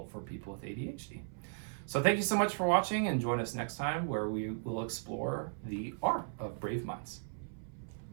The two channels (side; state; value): left; silent; 54 dB below the other